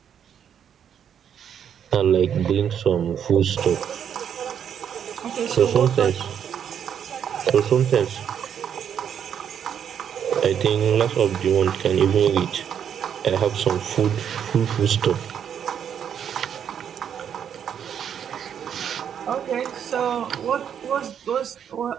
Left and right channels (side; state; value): left; quieter; 8.5 dB